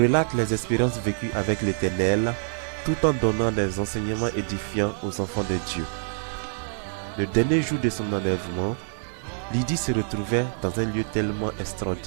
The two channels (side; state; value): left; silent; 61 dB below the other